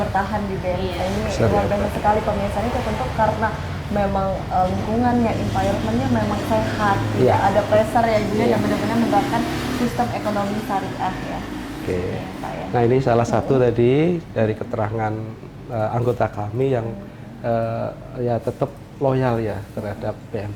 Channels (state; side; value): identical; both; correlation 1.00